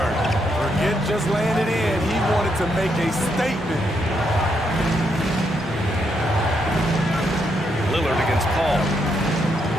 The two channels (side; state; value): both; normal; correlation 0.78